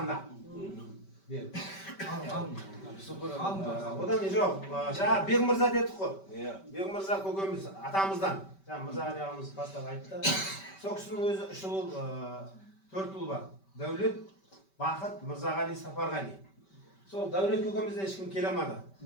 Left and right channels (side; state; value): right; late; 5.2 ms